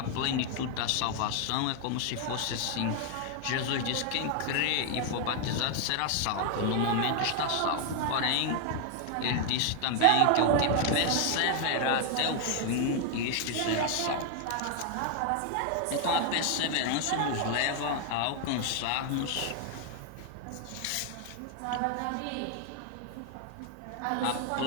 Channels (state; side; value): different; both; correlation 0.00